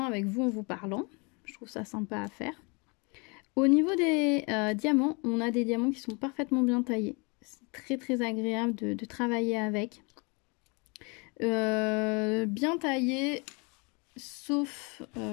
avec vous en vous parlant. Je trouve ça sympa à faire. Au niveau des diamants, on a des diamants qui sont parfaitement bien taillés. C'est très agréable de travailler avec. Bien taillé, sauf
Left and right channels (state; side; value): quieter; right; 31.0 dB